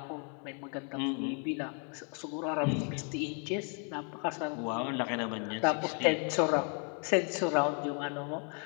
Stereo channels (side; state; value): right; quieter; 40.0 dB